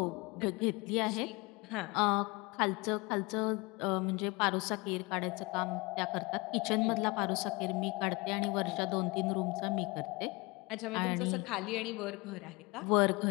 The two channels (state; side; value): quieter; right; 25.6 dB